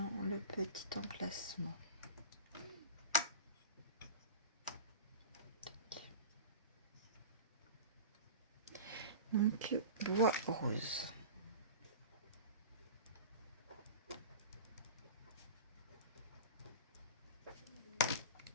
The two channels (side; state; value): both; inverted; correlation -0.32